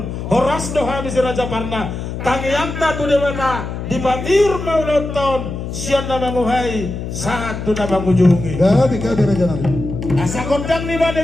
horas do habi si Raja Barna tangiang ta tu dewata di batir mauloton sian namang uhai saat tu namang ujungi Gabi raja nami. asa kondang ni bane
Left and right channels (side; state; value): left; noise; hum, 6 dB below the sound